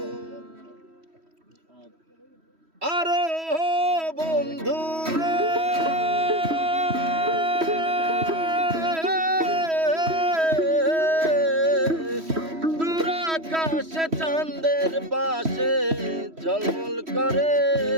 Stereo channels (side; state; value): left; late; 3.1 ms